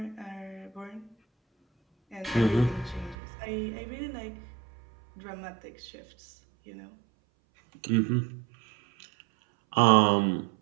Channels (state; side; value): drops out; left; at 3.2 s